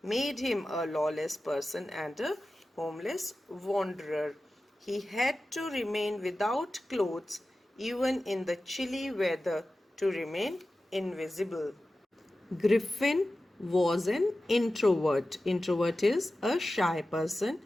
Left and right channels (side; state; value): both; normal; correlation 0.94